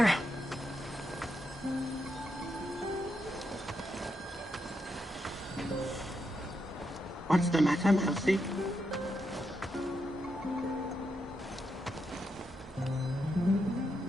What's the matter, Mousy?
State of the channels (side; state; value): both; normal; correlation 0.83